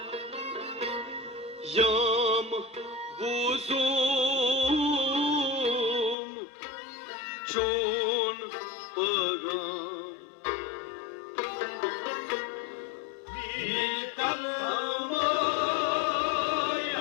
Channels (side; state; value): right; drops out; at 6.2 s